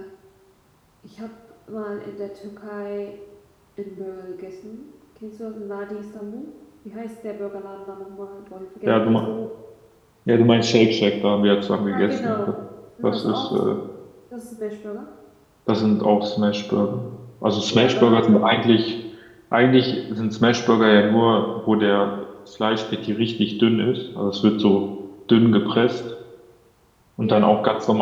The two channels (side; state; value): both; identical; correlation 1.00